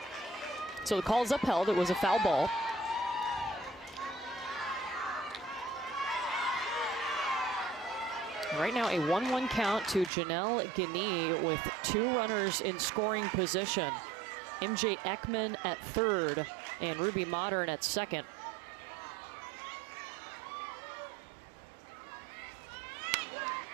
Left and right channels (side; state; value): left; drops out; at 10.1 s